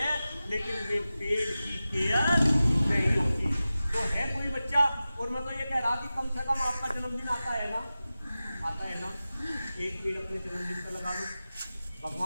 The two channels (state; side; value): inverted; both; correlation -0.95